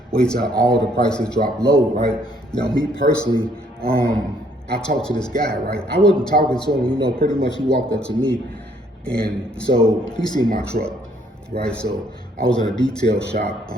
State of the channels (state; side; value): normal; both; correlation 0.66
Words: Wait till all the prices drop low, right? Now, me personally, I talked to this guy, right? I wasn't talking to him, pretty much he walked up to me and so he seen my truck. Right, so I was in a detail shop,